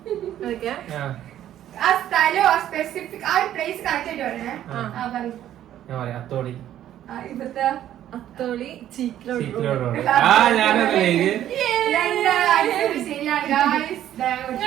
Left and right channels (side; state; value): left; quieter; 11.8 dB